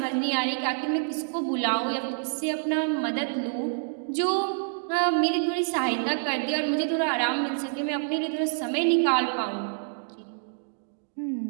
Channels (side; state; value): left; silent; digital silence